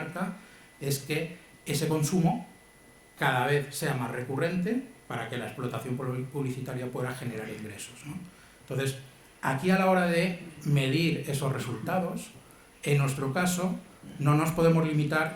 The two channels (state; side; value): identical; both; correlation 1.00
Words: es que ese consumo cada vez sea más recurrente para que la explotación publicitaria pueda generar ingresos, ¿no? Entonces, aquí a la hora de medir esos resultados, en nuestro caso, no nos podemos